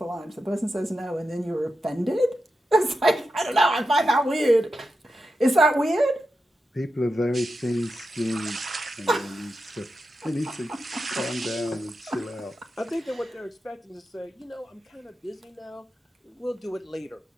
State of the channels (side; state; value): both; normal; correlation 0.89